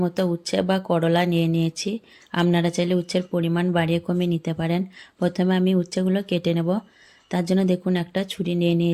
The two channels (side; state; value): both; identical; correlation 1.00